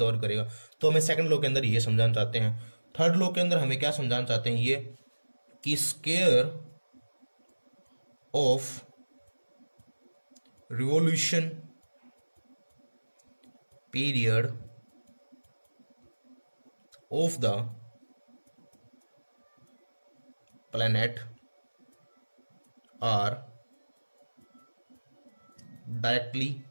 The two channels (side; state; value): both; inverted; correlation -1.00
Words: करेगा। तो हमें सेकंड लॉ के अंदर ये समझाना चाहते हैं। थर्ड लॉ के अंदर हमें क्या समझाना चाहते हैं, ये कि square of revolution period of the planet are directly